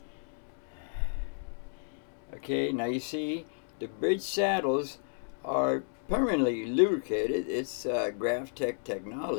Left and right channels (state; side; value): silent; right; digital silence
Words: Okay, now you see the bridge saddles are permanently lubricated. It's GrafTech